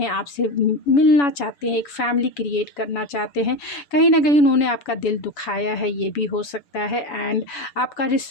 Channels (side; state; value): right; late; 7.0 ms